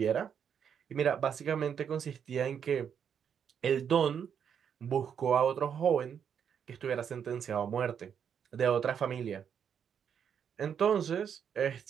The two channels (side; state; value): left; quieter; 7.9 dB